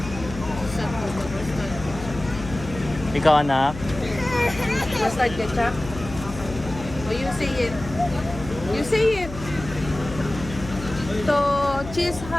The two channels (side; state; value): left; noise; hum, 11 dB below the sound